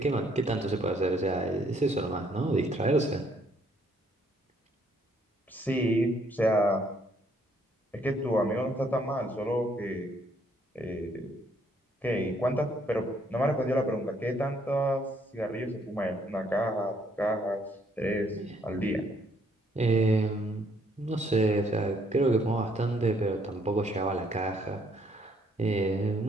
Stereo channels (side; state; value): both; normal; correlation 0.67